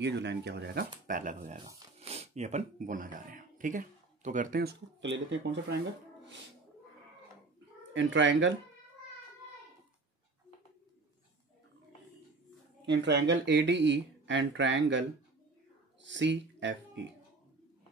जो लाइन क्या हो जाएगा पैरेलल हो जाएगा. ये अपन बोलना चाह रहे हैं. ठीक है, तो करते हैं उसको. तो ले लेते हैं कौन सा triangle. In triangle ADE and triangle CFE.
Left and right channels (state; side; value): quieter; left; 3.6 dB